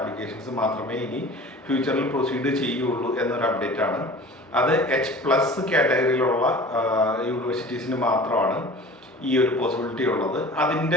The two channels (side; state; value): both; normal; correlation 0.41